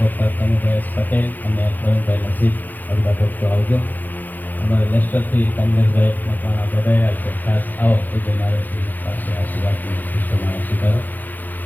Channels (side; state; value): right; late; 0.085 ms